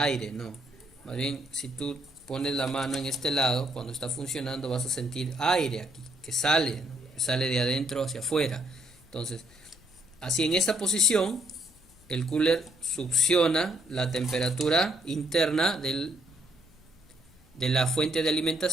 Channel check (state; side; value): noise; left; rumble, 28 dB below the sound